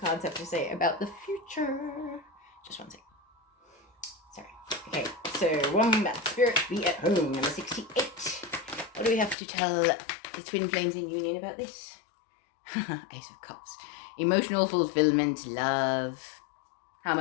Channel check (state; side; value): drops out; right; at 9.3 s